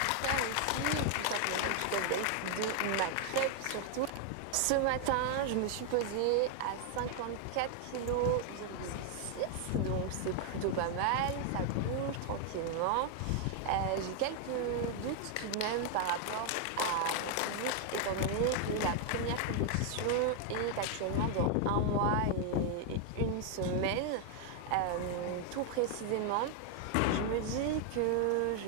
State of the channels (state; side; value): different; both; correlation 0.00